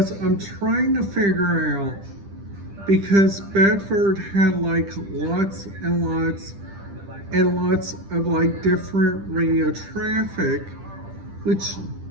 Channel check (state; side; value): late; left; 10 ms